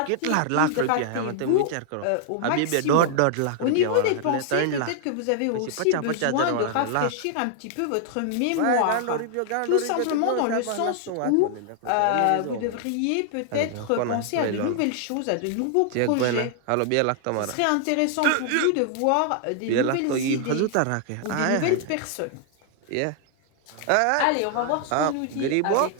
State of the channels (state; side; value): different; both; correlation 0.00